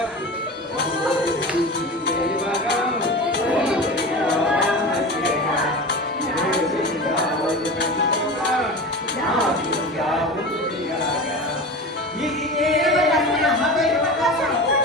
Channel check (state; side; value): normal; both; correlation 0.30